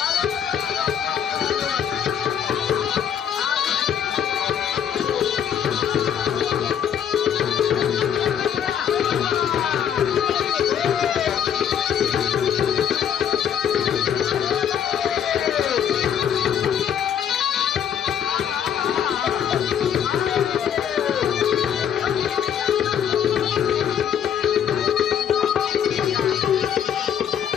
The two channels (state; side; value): quieter; right; 8.7 dB